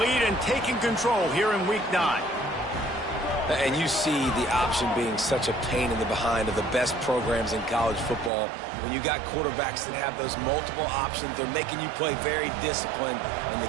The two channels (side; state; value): left; drops out; at 8.3 s